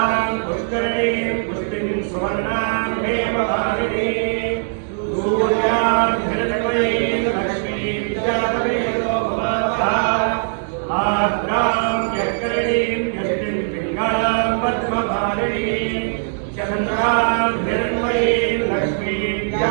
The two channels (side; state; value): left; silent; digital silence